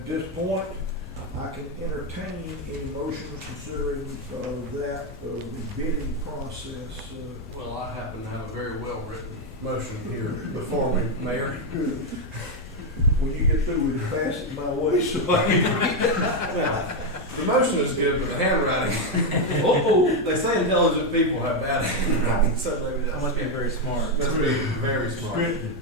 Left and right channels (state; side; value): normal; both; correlation 0.04